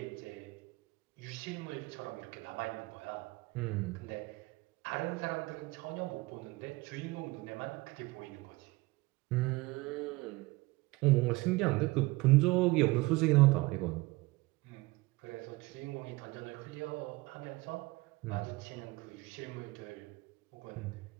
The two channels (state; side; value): quieter; left; 22.1 dB